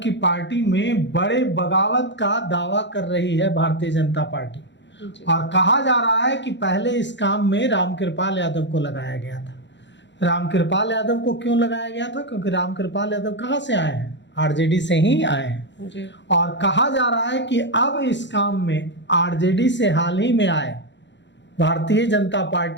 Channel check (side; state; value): right; late; 0.52 ms